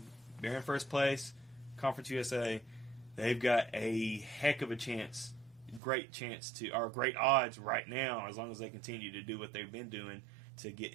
in first place. Conference USA, they've got a heck of a chance, great odds right now, as long as they continue to do what they've been doing, to get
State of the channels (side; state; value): left; drops out; at 5.8 s